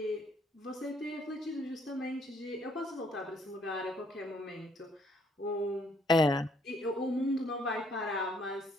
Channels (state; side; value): normal; both; correlation 0.68